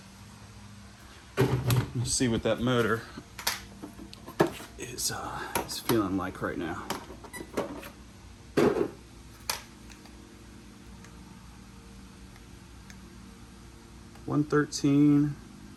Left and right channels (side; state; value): both; identical; correlation 1.00